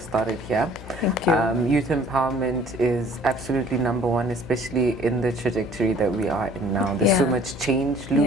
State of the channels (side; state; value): left; noise; hum, 15 dB below the sound